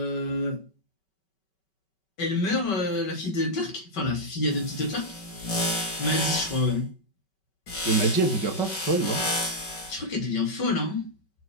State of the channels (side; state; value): right; late; 5.3 ms